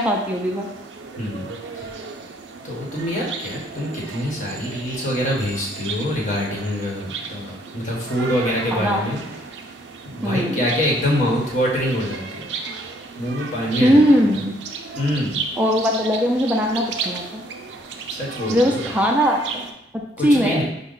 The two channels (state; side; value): normal; both; correlation 0.66